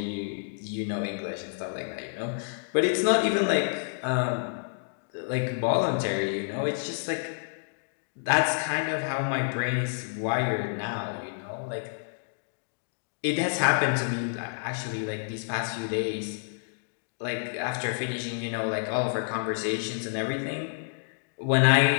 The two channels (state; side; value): silent; right; digital silence